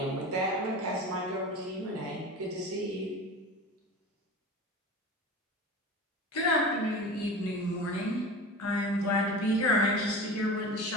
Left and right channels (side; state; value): both; normal; correlation 0.32